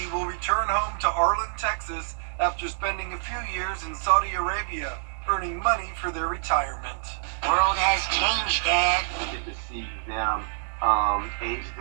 will return home to Arlen, Texas, after spending a few years in Saudi Arabia, earning money for their retirement. World has changed, Dad. We get to see them aged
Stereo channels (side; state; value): left; silent; digital silence